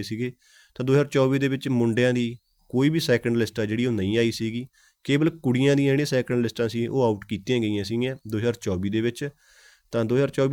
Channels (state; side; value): identical; both; correlation 1.00